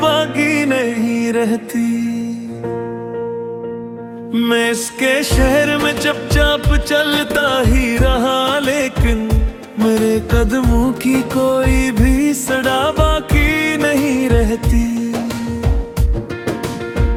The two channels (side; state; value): both; identical; correlation 1.00